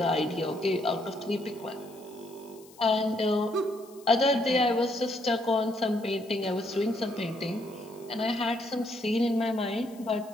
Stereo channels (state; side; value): noise; left; hiss, 24 dB below the sound